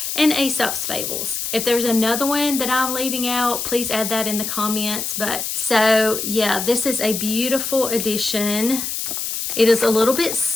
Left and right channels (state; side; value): noise; left; hiss, 3 dB below the sound